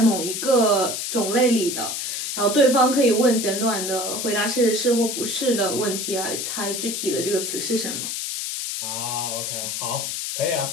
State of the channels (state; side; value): noise; left; hiss, 3 dB below the sound